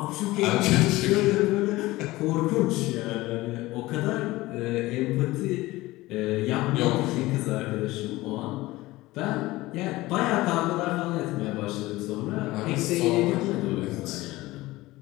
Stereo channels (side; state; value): right; quieter; 18.9 dB